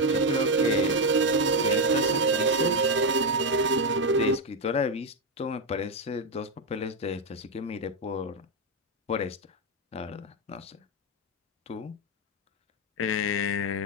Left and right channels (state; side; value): normal; both; correlation 0.05